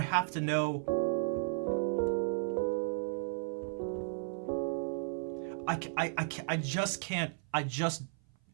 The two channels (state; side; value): silent; left; 55 dB below the other